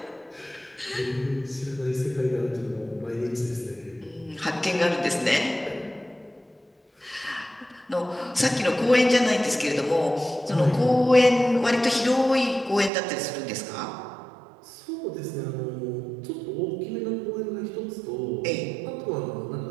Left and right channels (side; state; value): left; drops out; at 12.9 s